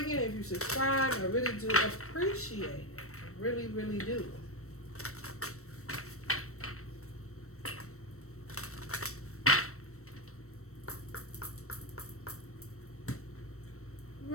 if you subscribe, I really do appreciate it. I really, really do.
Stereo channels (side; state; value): right; late; 0.63 ms